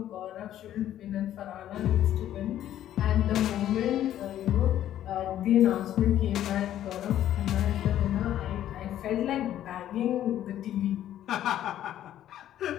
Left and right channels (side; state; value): right; quieter; 11.9 dB